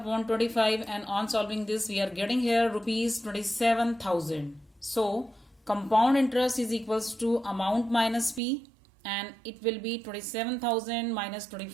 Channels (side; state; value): left; drops out; at 8.4 s